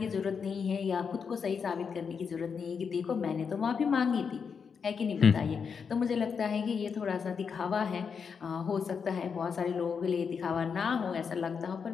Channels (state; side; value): quieter; right; 6.2 dB